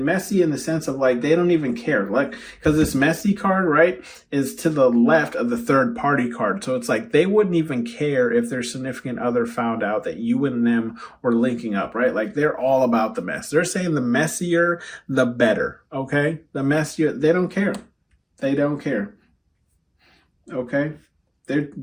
messy in the sense of like, they don't even care. Like, cause this messy card, right, is to the left of the third party card. So it's like, they wouldn't even care if their significant other found out that you and them were linking up, right? Like they're all about the mess. They're saying the messier, the better. Okay. The messier, they don't care. They don't care. Okay,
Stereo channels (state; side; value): identical; both; correlation 1.00